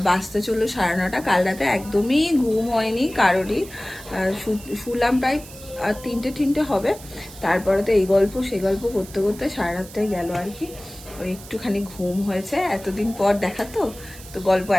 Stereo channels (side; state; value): right; noise; hiss, 17 dB below the sound